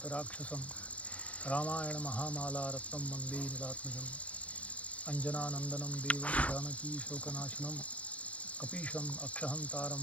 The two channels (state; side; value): late; right; 0.065 ms